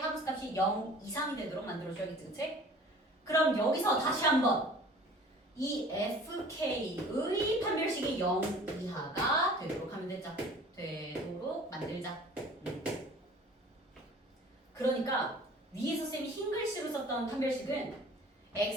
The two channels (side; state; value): both; normal; correlation 0.47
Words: 0 이상이 되도록 만들어줘야겠지, 그치? 그럼 여기서 다시 한번 이 fk의 판별식이 0 이하가 되도록 하면 되자. 되도록 만들자. 그러니까 위에서 쌤이 흰 글씨로 썼던 판별식은